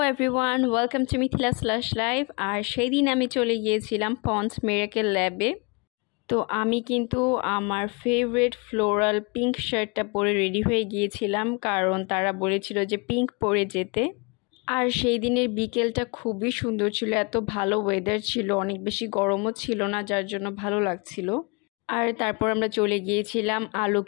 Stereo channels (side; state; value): right; quieter; 31.3 dB